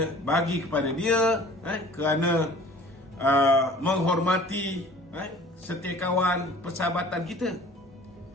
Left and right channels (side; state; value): both; normal; correlation 0.49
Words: bagi kepada dia kerana menghormati setiakawan persahabatan kita.